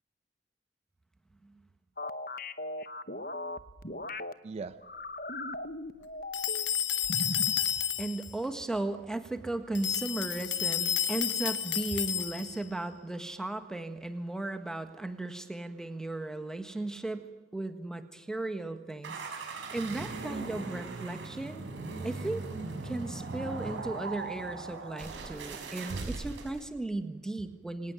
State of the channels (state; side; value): normal; both; correlation 0.39